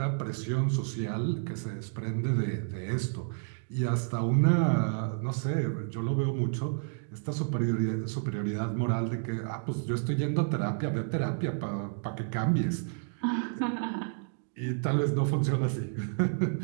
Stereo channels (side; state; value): left; silent; digital silence